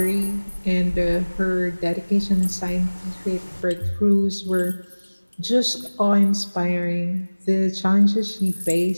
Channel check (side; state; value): both; inverted; correlation -1.00